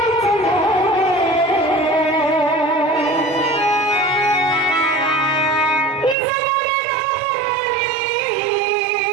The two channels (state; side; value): drops out; left; at 6.2 s